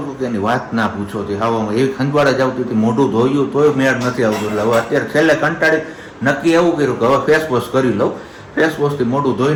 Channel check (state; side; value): identical; both; correlation 1.00